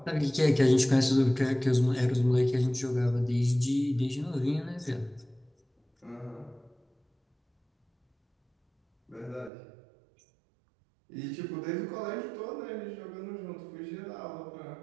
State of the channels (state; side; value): drops out; left; at 9.5 s